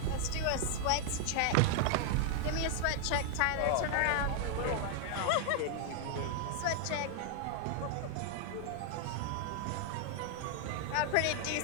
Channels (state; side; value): different; both; correlation 0.00